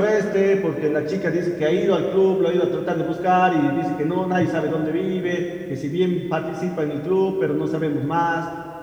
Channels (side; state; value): both; identical; correlation 1.00